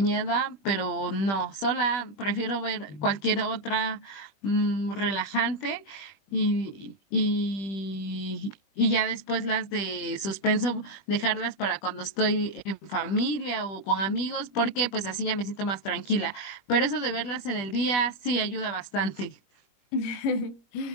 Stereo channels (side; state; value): right; late; 20 ms